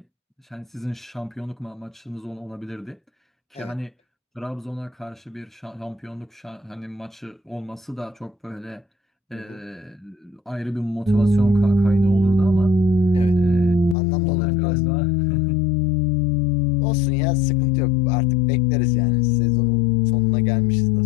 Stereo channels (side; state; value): right; drops out; at 14.0 s